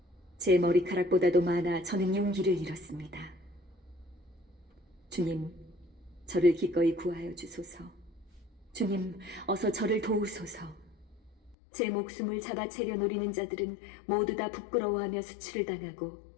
제 머리카락보다도 많아 저는 용기를 잃었습니다. 주님, 저를 기꺼이 구하여 주소서. 주님, 어서 저를 도우소서. 제 목숨을 잡아채려 노리는 자들은 모두 다 부끄러워하며 수치를 당하고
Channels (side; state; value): right; drops out; at 11.6 s